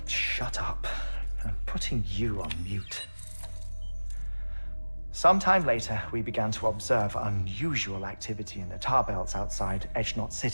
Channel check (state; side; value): inverted; both; correlation -1.00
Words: Shut up. I'm putting you on mute. Sometime later, we began to observe unusual activity in the tar belts outside Edgenot